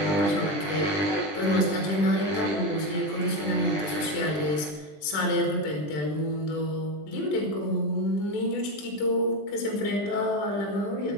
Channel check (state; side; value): late; right; 20 ms